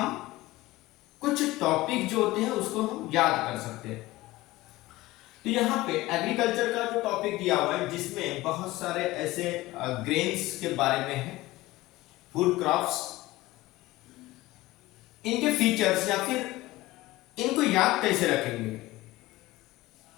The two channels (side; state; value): right; quieter; 18.5 dB